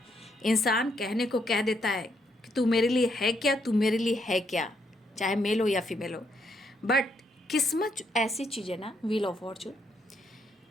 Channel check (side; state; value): both; normal; correlation 0.75